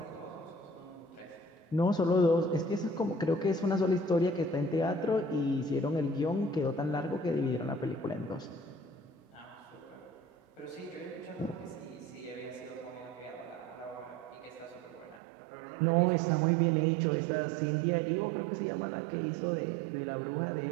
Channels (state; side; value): drops out; left; at 15.2 s